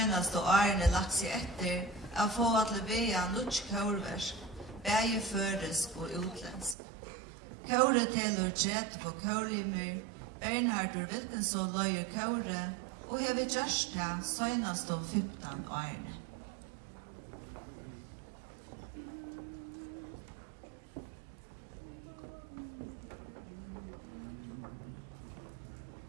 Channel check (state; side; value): drops out; left; at 6.8 s